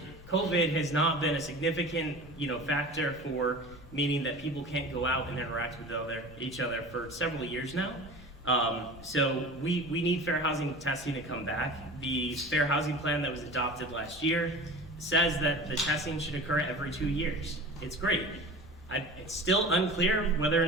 COVID has not been a significant, factor for meaning that people can't go out and interact with each other for several years now. So we need fair housing testing to come back. The fair housing plan that was adopted last year says that the testing should occur every 2 years. It's great. It's still unclear whether or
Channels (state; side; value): normal; both; correlation 0.36